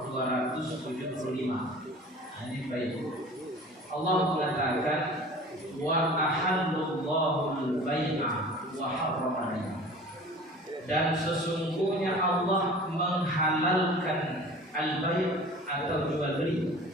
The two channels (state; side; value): normal; both; correlation 0.43